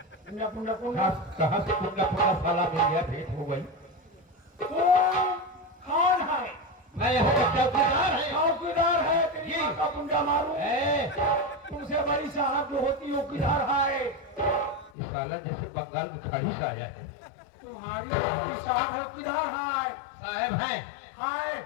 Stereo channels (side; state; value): right; drops out; at 14.9 s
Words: कुंडा कुंडा कुंडा, कहाँ से कुंडा कुंडा साला मिल गया, भेंट हो गई। कौन है? मैं यहाँ का चौकीदार है। चौकीदार है? तेरी माँ का कुंडा मारूं? तुमसे बड़ी साहब जो होती है चौकीदार है। ये साला जैसे बंगाल में खाड़ी से आया है। तुम्हारी साहब है, चौकीदार है। साहब है? हाय।